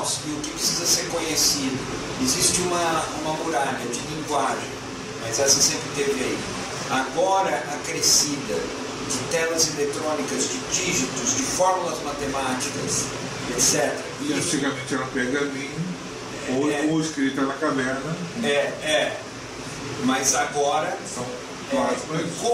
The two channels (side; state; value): both; identical; correlation 1.00